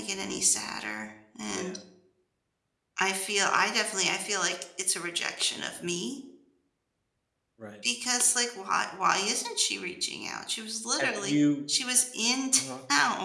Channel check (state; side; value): identical; both; correlation 1.00